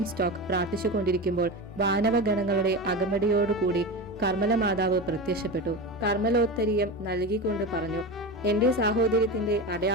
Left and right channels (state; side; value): normal; both; correlation 0.24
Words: സ്റ്റോക്ക് പ്രാർത്ഥിച്ചുകൊണ്ടിരിക്കുമ്പോൾ വാനവഗണങ്ങളുടെ അകമ്പടിയോടുകൂടി കർമ്മല മാതാവ് പ്രത്യക്ഷപ്പെട്ടു. കർമ്മലോത്തരീയം നൽകിക്കൊണ്ട് പറഞ്ഞു: എന്റെ സാഹോദര്യത്തിന്റെ